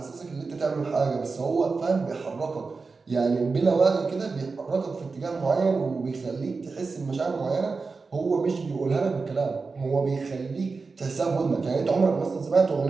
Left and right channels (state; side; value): quieter; left; 4.3 dB